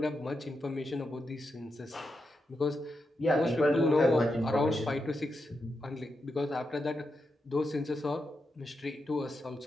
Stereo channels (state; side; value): normal; both; correlation 0.86